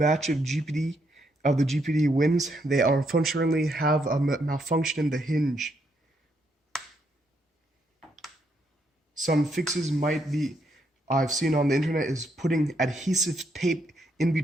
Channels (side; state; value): both; normal; correlation 0.76